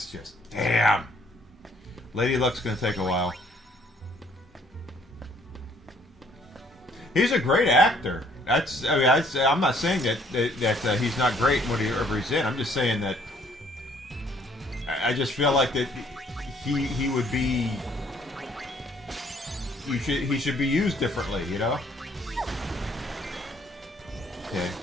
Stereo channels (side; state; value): both; normal; correlation 0.63